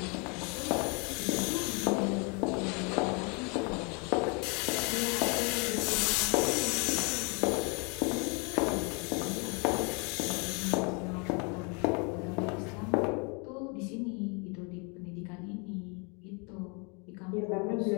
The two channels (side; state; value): right; quieter; 33.3 dB